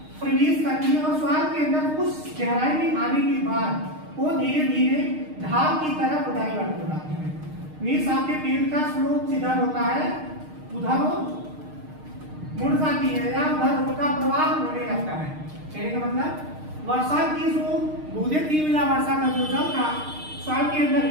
प्रवेश करती है और सॉइल के अंदर कुछ गहराई में आने के बाद वो धीरे धीरे ढाल की तरफ डाइवर्ट हो जाती है। मीन्स आपके पेड़ का स्लोप जिधर होता है उधर वो मुड़ जाती है या उधर उनका प्रवाह होने लगता है। कहने का मतलब वर्षा की जो बूंदें थी या वर्षा का जो जल था सॉइल के अंदर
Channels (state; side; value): late; left; 6.5 ms